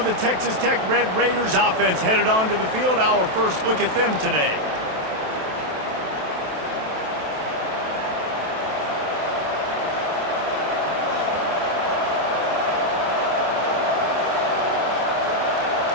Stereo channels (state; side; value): late; left; 27 ms